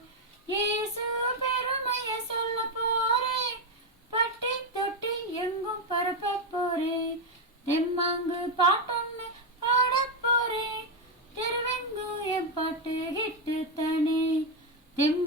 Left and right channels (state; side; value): normal; both; correlation 0.05